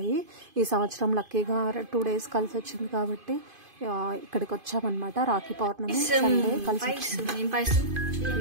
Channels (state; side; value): late; left; 2.5 ms